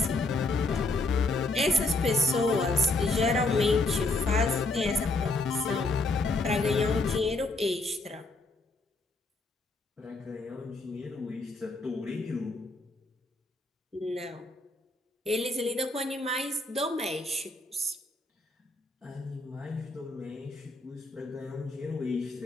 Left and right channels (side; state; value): right; quieter; 3.0 dB